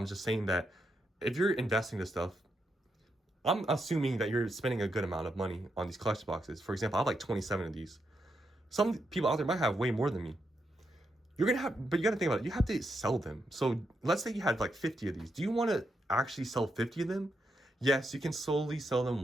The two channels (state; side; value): normal; both; correlation 0.82